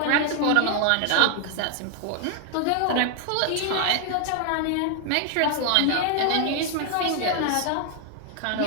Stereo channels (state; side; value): different; both; correlation 0.00